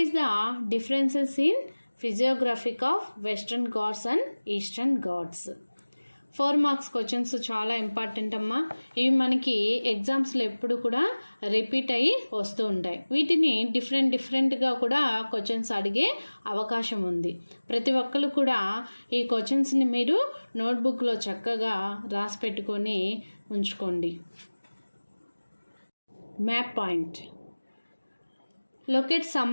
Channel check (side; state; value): both; inverted; correlation -1.00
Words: is the differences in physiographic of Western Ghats and Eastern Ghats? 4 marks questions చాలా ఇంపార్టెంట్ అమ్మా. ఇవి మనకి ఎగ్జామ్స్లో ఎప్పుడు కూడా రిపీట్ అయ్యి వస్తూ ఉంటాయి. వీటిని డిఫరెంట్గా కూడా క్వశ్చన్స్ అడిగే అవకాశం ఉంది. ప్రతి ఒక్కరు కూడా ఈ క్వశ్చన్స్ని మీరు నోట్బుక్లో చక్కగా రాసి పెట్టుకొని ఉంచుకోండి. Map point. Locate